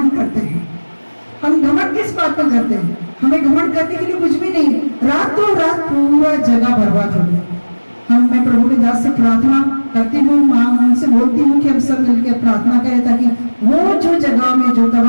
करते हैं। हम घमंड किस बात में करते हैं? हमें घमंड करने के लिए कुछ भी नहीं। रातों रात पूरा जगह बर्बाद हो गया। मैं प्रभु के दास से प्रार्थना करती हूँ, माँ उनसे बोलती हूँ कि हम सब मिलकर प्रार्थना करें ताकि वो जो जगह में जो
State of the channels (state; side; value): inverted; both; correlation -1.00